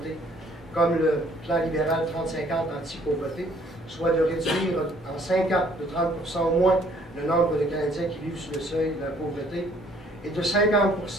comme le plan libéral 30-50 anti-pauvreté, soit de réduire en 5 ans de 30% au moins le nombre de Canadiens qui vivent sous le seuil de la pauvreté et de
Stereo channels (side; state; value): both; normal; correlation 0.61